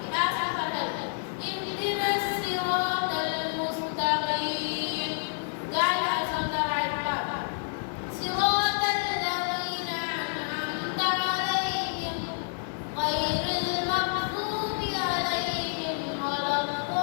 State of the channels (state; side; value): silent; right; 59 dB below the other